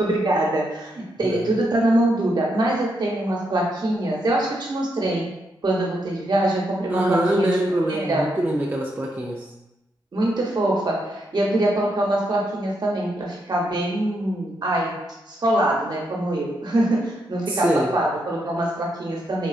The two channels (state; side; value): normal; both; correlation 0.80